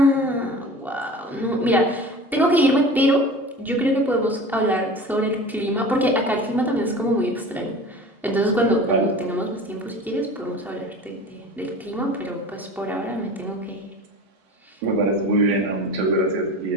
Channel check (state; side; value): normal; both; correlation 0.37